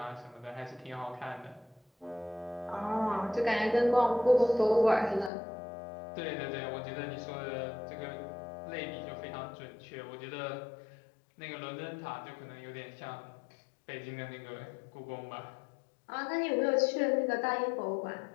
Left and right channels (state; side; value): drops out; right; at 5.3 s